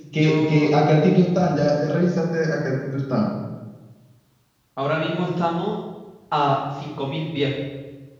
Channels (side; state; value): both; identical; correlation 1.00